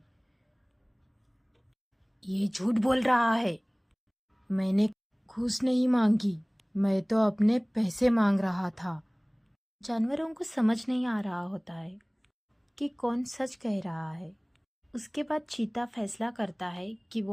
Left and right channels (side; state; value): both; identical; correlation 1.00